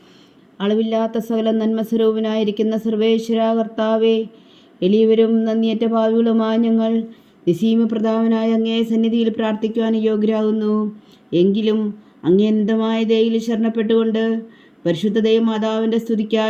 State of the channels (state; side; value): identical; both; correlation 1.00